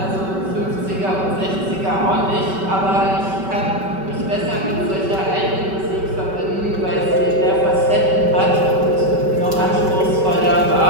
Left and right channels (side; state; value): left; late; 5.2 ms